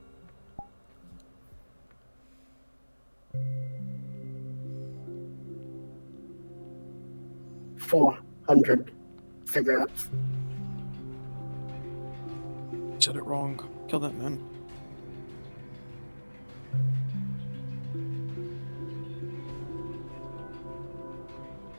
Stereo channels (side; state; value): both; inverted; correlation -1.00